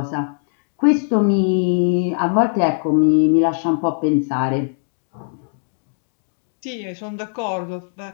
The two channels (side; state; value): right; silent; digital silence